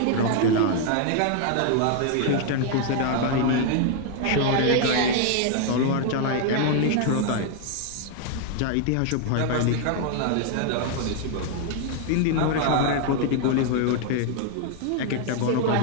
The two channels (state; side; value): different; both; correlation 0.00